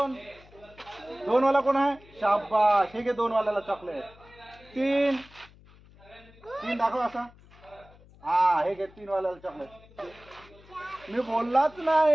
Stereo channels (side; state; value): left; noise; hum, 25 dB below the sound